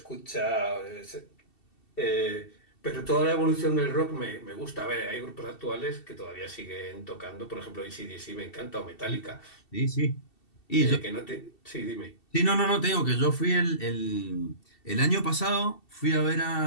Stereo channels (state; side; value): late; right; 2.7 ms